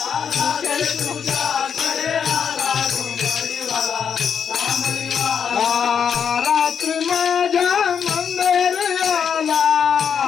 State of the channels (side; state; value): right; quieter; 7.4 dB